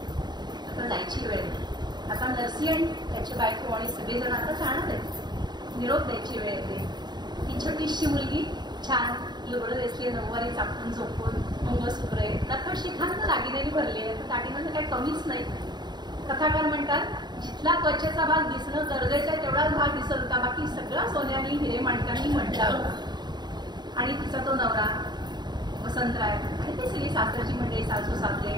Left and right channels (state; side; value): late; left; 0.21 ms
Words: आता जायची वेळ. आता नरसी आणि त्याची बायको आणि सगळेजण आता जाणार आहेत, निरोप द्यायची वेळ येते. ही छोटीशी मुलगी छान लुगडं दिसली, नऊवारी चापून झोपून, मंगळसूत्रे, नखर शिखांना दागिनेनी भरली आहे, दागिन्यांचं काही कमीच नाही. कथाकार म्हणतात जिथला त्वचेचा भाग दिसणं गरजेचं आहे तेवढाच भाग दिसत होता, बाकी सगळा सोन्याने हिरे माणकांनी म्हटला होता. आणि तिचा तो नवरा वसंतराय आणि ते सगळी सासरची मंडळी, सासू सासरे,